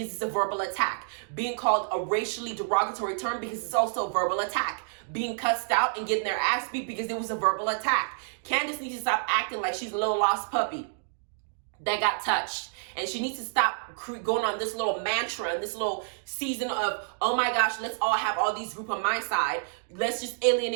it's a verbal attack. Being called a racially derogatory term because it's also a verbal attack. Being cussed out and getting their ass beat because it was a verbal attack. Candace needs to stop acting like she's a little lost puppy that got touched. And she needs to stop going on this little mantra and this little season of, oh my gosh, let's all have all these group on my side. Let's just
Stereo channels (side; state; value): left; silent; digital silence